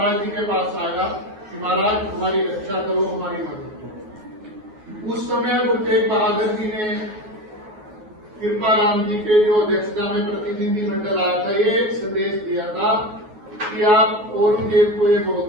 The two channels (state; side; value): late; left; 9.4 ms